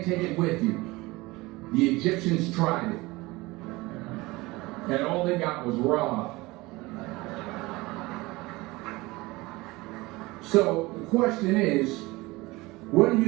take it with you. The Egyptians tried it, and all they got was robbed. So the question is, what are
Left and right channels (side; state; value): left; quieter; 21.7 dB